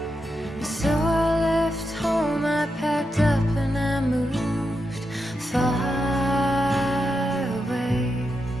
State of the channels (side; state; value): both; normal; correlation 0.85